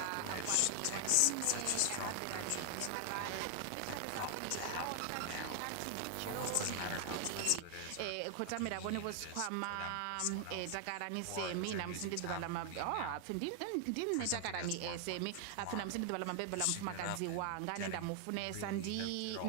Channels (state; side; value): different; both; correlation 0.00